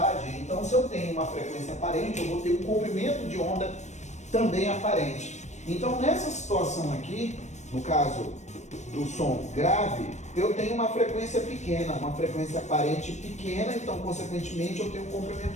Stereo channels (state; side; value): late; right; 0.34 ms